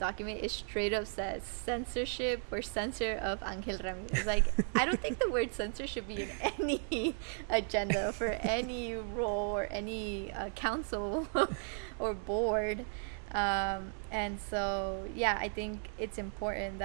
it straight up says censorship or censure of Angel Ramirez. Like, I don't think the word censor should be in any agenda for any role or any council or board. And so, yeah, I think it's important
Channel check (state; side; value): silent; left; 54 dB below the other